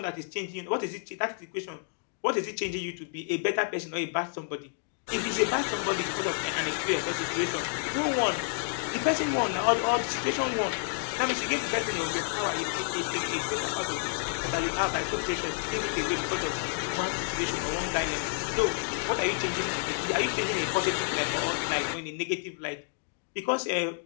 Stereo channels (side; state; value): right; silent; digital silence